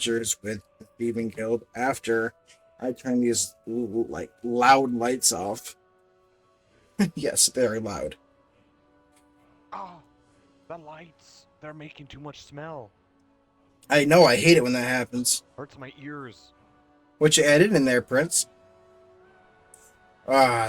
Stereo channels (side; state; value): both; identical; correlation 1.00